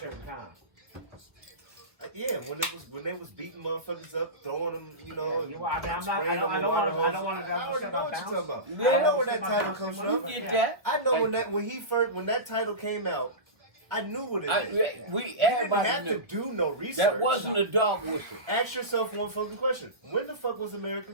time. Yeah, when they was beating motherfuckers up, throwing them, you know. Yeah, I mean, I'm not. spraying I don't them with want water to. I hoses. don't want to. I already know what you're talking about. Yeah. I know where that title comes from. You get that? I know Thank when you. that title came out, I knew what it I, meant. we You didn't everybody have knew. to do no research. That wasn't a dog whistle. Ask yourself one fucking question. When the fuck was America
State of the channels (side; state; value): left; late; 1.0 ms